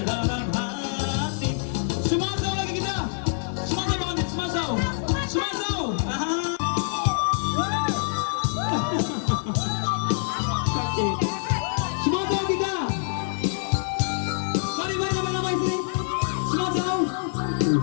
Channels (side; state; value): right; silent; 58 dB below the other